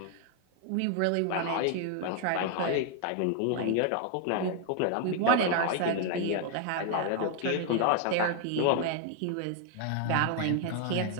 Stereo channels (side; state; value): both; different; correlation 0.00